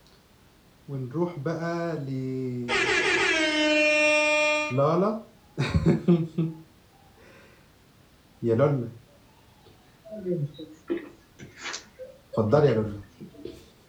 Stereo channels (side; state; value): both; identical; correlation 1.00